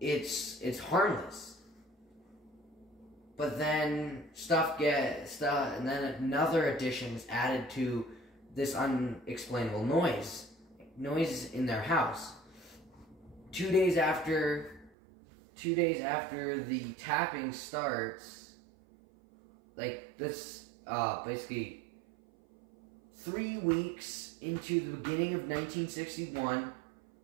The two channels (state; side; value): drops out; left; at 14.9 s